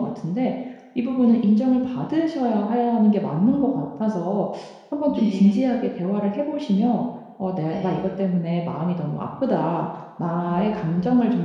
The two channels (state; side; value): identical; both; correlation 1.00